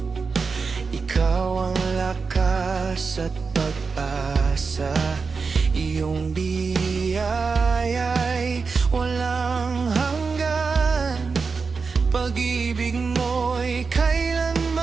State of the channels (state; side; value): quieter; left; 4.8 dB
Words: ikaw ang lakas at pag-asa. Iyong biyaya'y walang hanggan, pag-ibig mo'y